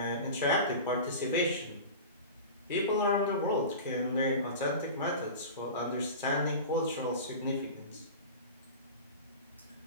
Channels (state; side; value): inverted; both; correlation -0.32